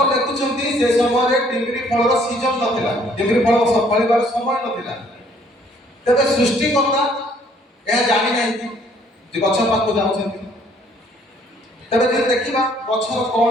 ଲେଖୁଛନ୍ତି ସେ ସମୟରେ ଡିମ୍ବିରି ଫଳର ସିଜନ ନଥିଲା, ଡିମ୍ବିରି ଫଳ ଫଳିବାର ସମୟ ନଥିଲା। ତେବେ ସୃଷ୍ଟିକର୍ତ୍ତା ଏହା ଜାଣି ନାହାନ୍ତି ଯେ ଗଛ ପାଖକୁ ଯାଉଛନ୍ତି। ତେବେ ଯଦି ଦେଖିବା ଗଛର କ'ଣ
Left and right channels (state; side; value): normal; both; correlation 0.62